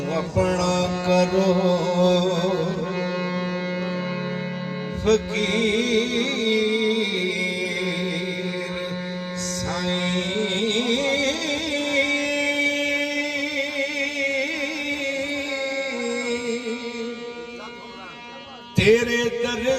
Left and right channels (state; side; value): identical; both; correlation 1.00